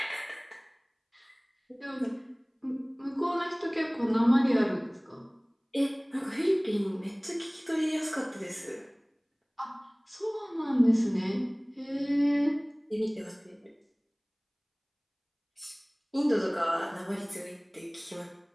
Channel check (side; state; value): both; identical; correlation 1.00